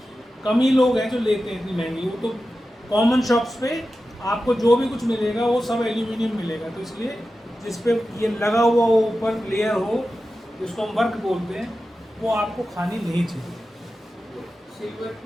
कम ही लोग हैं जो लेते हैं इतनी महंगी, वो तो कॉमन शॉप्स पे आपको जो भी कुछ मिलेगा वो सब एल्यूमिनियम मिलेगा, तो इसलिए जिस पे ये लगा हुआ हो ऊपर लेयर हो, जिसको हम वर्क बोलते हैं, वो आपको खानी नहीं चाहिए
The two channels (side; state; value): both; normal; correlation 0.93